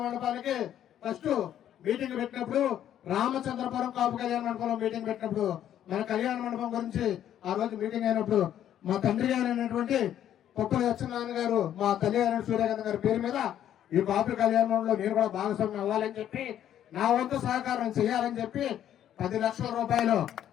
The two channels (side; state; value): right; quieter; 10.8 dB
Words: మండపానికి ఫస్ట్ మీటింగ్ పెట్టినప్పుడు రామచంద్రపురం కాపు కళ్యాణ మండపంలో మీటింగ్ పెట్టినప్పుడు మన కళ్యాణ మండపం గురించి ఆ రోజు మీటింగ్ అయినప్పుడు మా తండ్రి గారు అయినటువంటి పప్పుల సత్యనారాయణ గారు మా తల్లి గారు సూర్యకాంత్ గారి పేరు మీద ఈ కాపు కళ్యాణ మండపంలో నేను కూడా భాగస్వామ్యం అవ్వాలని చెప్పి నా వంతు సహకారం చేయాలని చెప్పి 10 లక్షల రూపాయలు